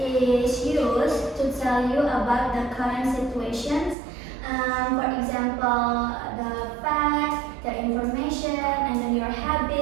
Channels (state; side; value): drops out; left; at 4.0 s